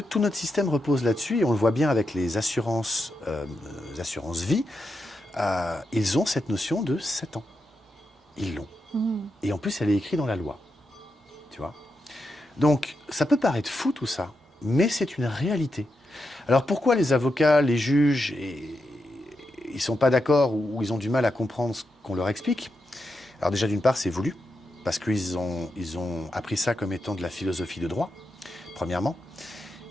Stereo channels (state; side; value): normal; both; correlation 0.86